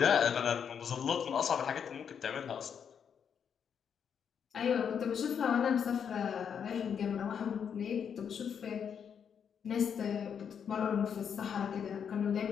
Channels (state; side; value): quieter; right; 7.5 dB